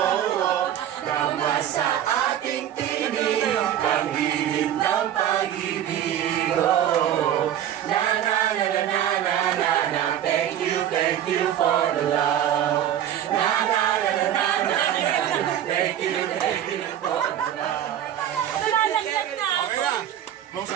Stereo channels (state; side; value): quieter; left; 10.9 dB